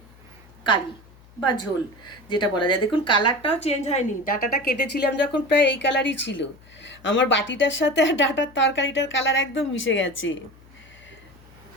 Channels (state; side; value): noise; left; hum, 25 dB below the sound